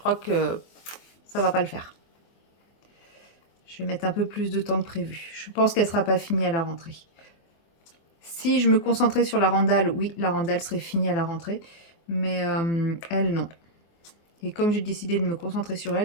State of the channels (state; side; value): late; right; 24 ms